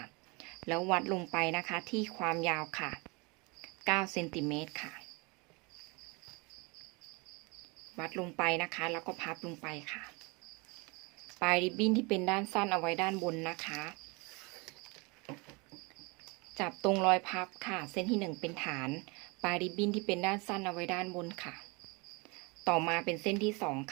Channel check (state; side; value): quieter; left; 28.2 dB